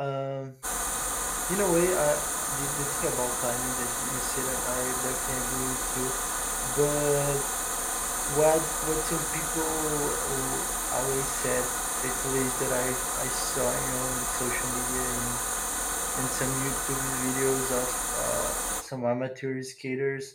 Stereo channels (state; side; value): identical; both; correlation 1.00